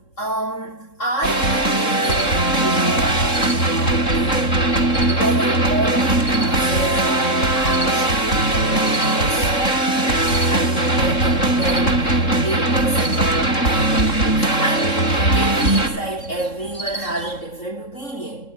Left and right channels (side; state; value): right; late; 3.7 ms